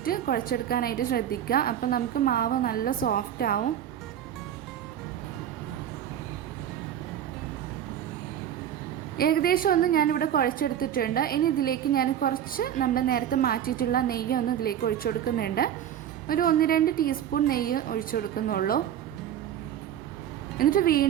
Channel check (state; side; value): quieter; left; 10.2 dB